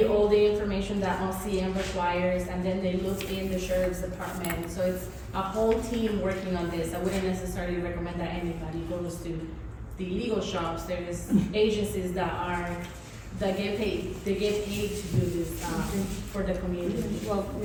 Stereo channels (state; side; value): identical; both; correlation 1.00